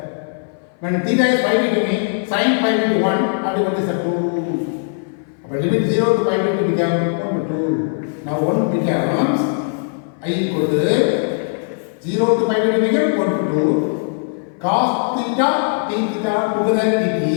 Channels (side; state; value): right; silent; 59 dB below the other